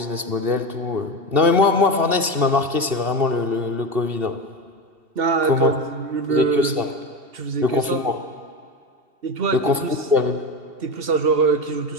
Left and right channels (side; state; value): left; late; 2.7 ms